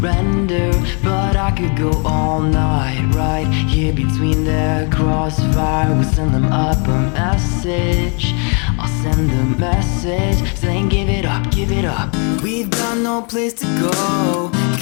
but I could go all night right here between their crossfire. We'll send them up a message, I'll send the message saying give it up, give it up. We've got no place to go,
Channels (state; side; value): quieter; right; 37.3 dB